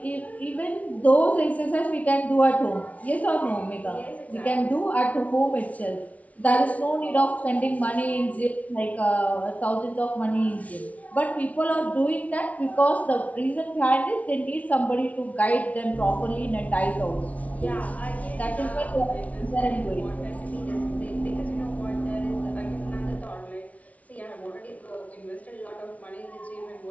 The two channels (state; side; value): late; right; 0.068 ms